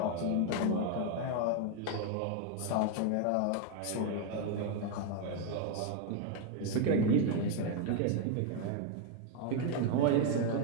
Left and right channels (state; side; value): different; both; correlation 0.00